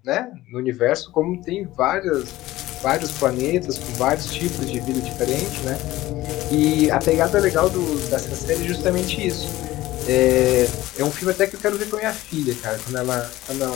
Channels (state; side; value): quieter; right; 16.7 dB